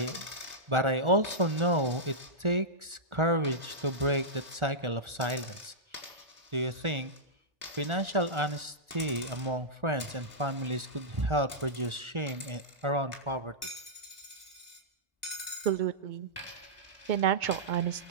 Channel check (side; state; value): left; late; 1.4 ms